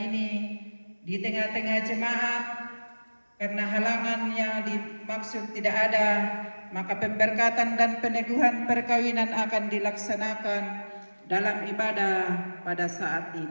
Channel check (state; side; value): inverted; both; correlation -1.00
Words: di tengah-tengah jemaat. Karena halangan yang dimaksud tidak ada, maka pemberkatan dan peneguhan perkawinan akan dilaksanakan dalam ibadah pada saat